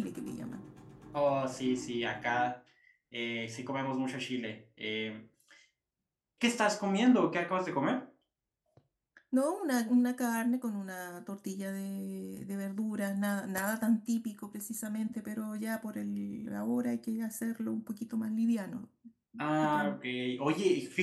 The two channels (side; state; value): both; identical; correlation 1.00